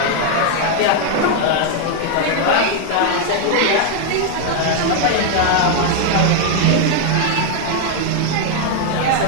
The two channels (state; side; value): different; both; correlation 0.00